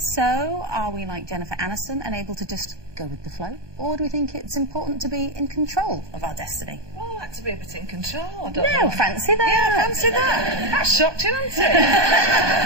are we like Jennifer Aniston and able to just go with the flow? Or do we think it's important to be in control of our destiny? Well, I like to be a bit in control. I don't No, know. fancy that. Yeah, fancy that. That shocked you, didn't it?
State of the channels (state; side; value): late; left; 1.2 ms